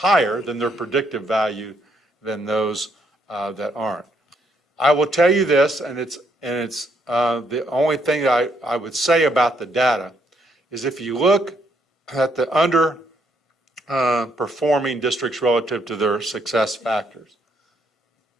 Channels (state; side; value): normal; both; correlation 0.73